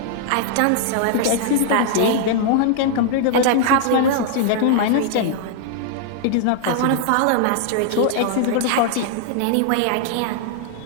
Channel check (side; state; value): both; different; correlation -0.01